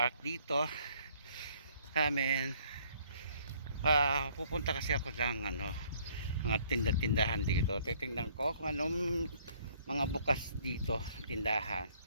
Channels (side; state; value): both; inverted; correlation -0.61